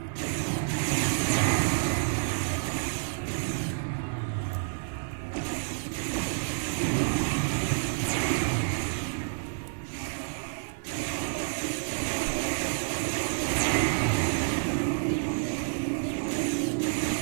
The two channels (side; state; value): left; silent; digital silence